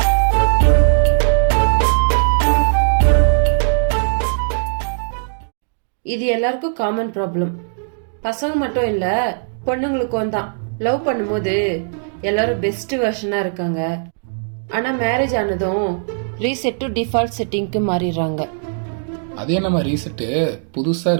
இது எல்லாருக்கும் காமன் ப்ராப்ளம். பசங்க மட்டும் இல்ல, பொண்ணுங்களுக்கும் தான். லவ் பண்ணும்போது எல்லாரும் பெஸ்ட் வெர்ஷனா இருக்காங்க, ஆனா மேரேஜ் ஆனதும் ரீசெட் டு டிஃபால்ட் செட்டிங்க்கு மாறிடுறாங்க. அதே நம்ம ரீசெட்டு புதுசா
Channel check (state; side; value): silent; left; digital silence